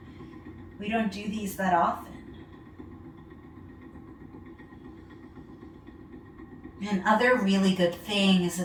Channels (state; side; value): identical; both; correlation 1.00